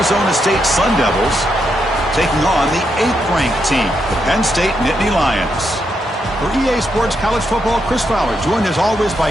State Sun Devils taking on the 8th-ranked team, the Penn State Nittany Lions. For EA Sports College Football, Chris Fowler, joined as always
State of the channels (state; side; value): normal; both; correlation 0.81